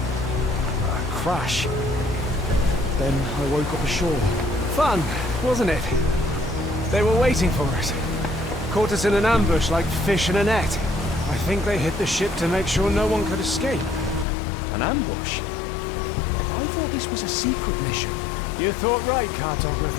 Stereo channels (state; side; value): drops out; right; at 14.2 s